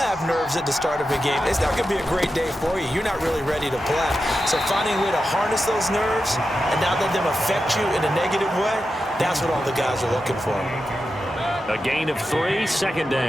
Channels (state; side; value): normal; both; correlation 0.90